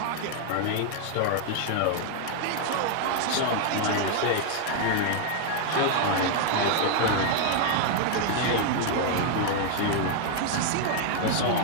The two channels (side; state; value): both; different; correlation 0.00